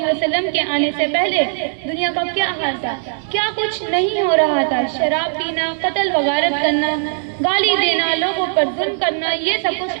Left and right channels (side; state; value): left; silent; 63 dB below the other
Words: وسلم کے آنے سے پہلے دنیا کا کیا حال تھا، کیا کچھ نہیں ہو رہا تھا۔ شراب پینا، قتل و غارت کرنا، گالی دینا، لوگوں پر ظلم کرنا، یہ سب